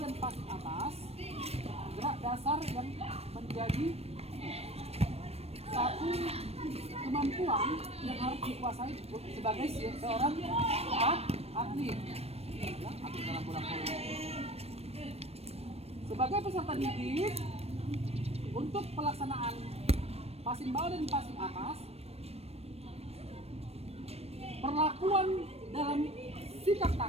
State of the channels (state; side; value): late; left; 0.29 ms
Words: passing atas, gerak dasar yang menjadi satu kemampuan yang harus dikuasai sebagai seorang atlet, ya, atlet dalam bola voli. Sebagai peserta didik, untuk pelaksanaan passing bawah dan passing atas, perlakuan dalam sikap